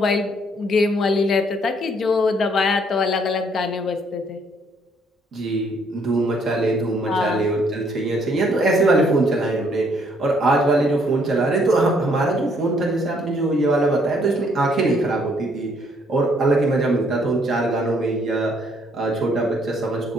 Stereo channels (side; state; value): both; normal; correlation 0.67